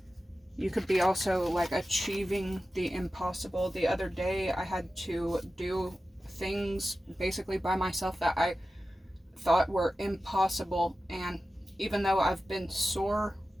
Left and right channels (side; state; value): both; normal; correlation 0.94